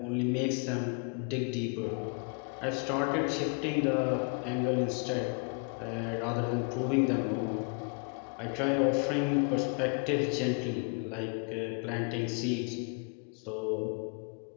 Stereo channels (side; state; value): right; quieter; 37.9 dB